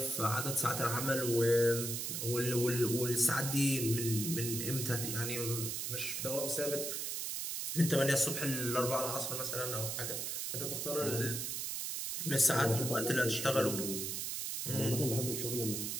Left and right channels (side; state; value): right; noise; hiss, 3 dB below the sound